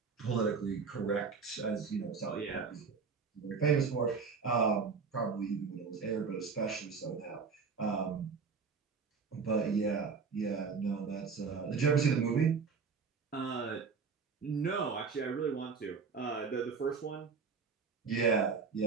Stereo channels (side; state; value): left; quieter; 5.3 dB